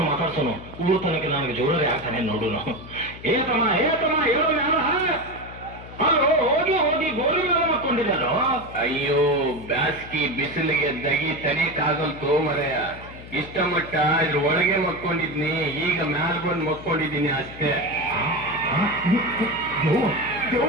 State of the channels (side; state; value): left; noise; hum, 16 dB below the sound